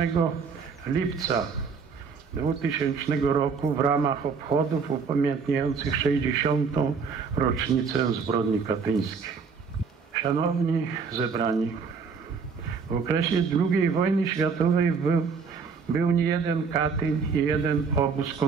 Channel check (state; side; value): quieter; left; 5.5 dB